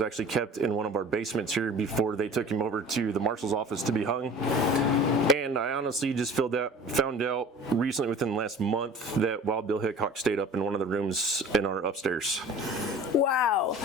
kept in one of our basements here before they took him over to the marshal's office to be hung. And I honestly just found out recently within the last month that Wild Bill Hickok stayed up in one of the rooms in our upstairs. Wow,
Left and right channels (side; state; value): both; normal; correlation 0.42